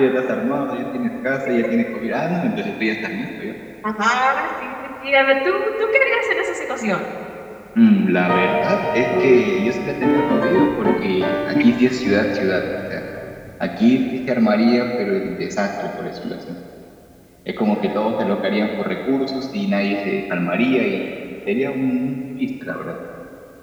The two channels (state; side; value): identical; both; correlation 1.00